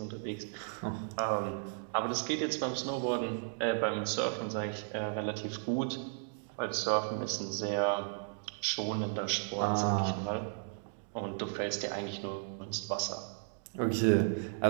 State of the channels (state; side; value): silent; left; digital silence